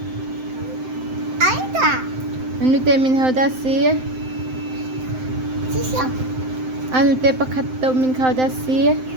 Aida. ننو تي من هذا سي Sisyo. أنو تي بكتو من هذا سي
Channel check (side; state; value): left; late; 7.8 ms